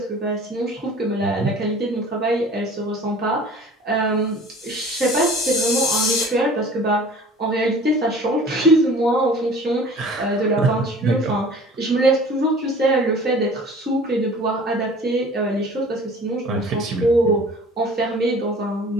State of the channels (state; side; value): normal; both; correlation 0.46